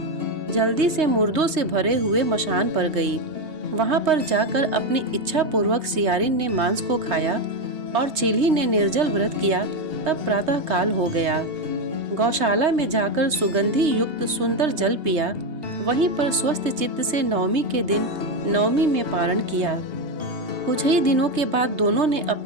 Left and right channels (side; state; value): left; late; 3.2 ms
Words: जल्दी से मुर्दों से भरे हुए मशान पर गई। वहां पर जाकर अपनी इच्छा पूर्वक सियारिन ने मांस को खाया और चिल्ही ने निर्जल व्रत किया। तब प्रातः काल हो गया। गौशाला में जाकर सुगंधि युक्त सुंदर जल पिया। वहीं पर स्वस्थ चित्त से नवमी के दिन नवमी में पारण किया। कुछ ही दिनों के बाद दोनों ने